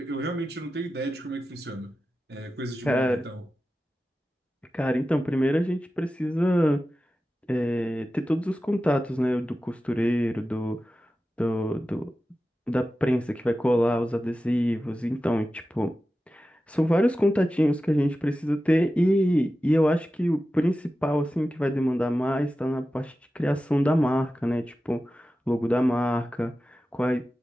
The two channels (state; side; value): normal; both; correlation 0.93